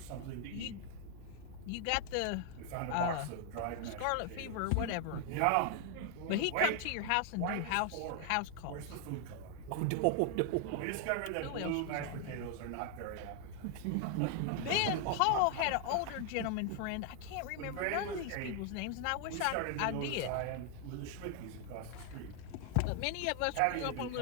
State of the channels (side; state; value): both; different; correlation 0.00